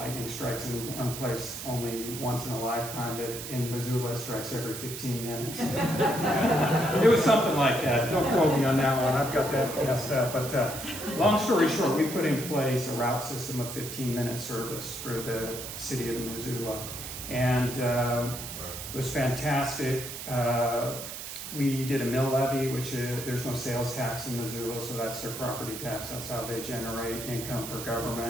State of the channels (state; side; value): noise; right; hiss, 8 dB below the sound